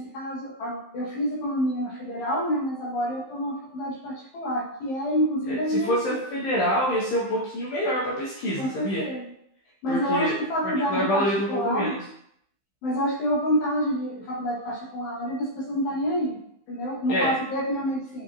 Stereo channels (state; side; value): late; right; 15 ms